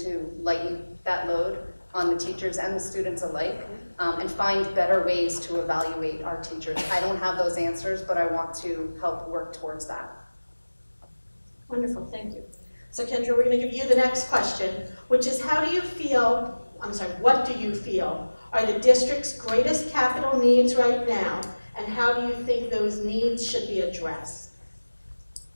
lighten that load on the teachers and the students alike, and find better ways to evaluate our teachers. I don't have those answers, but I want to help work towards that. Wonderful, thank you. So Kendra, we're going to give you the next question, which is what do you feel are the district's greatest capital needs right now, and how do you think those needs should be addressed?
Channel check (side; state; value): both; inverted; correlation -1.00